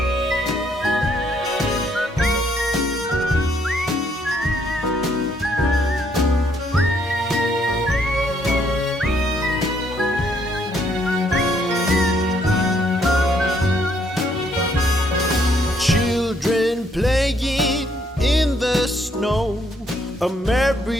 Playing in the snow, a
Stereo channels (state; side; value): normal; both; correlation 0.69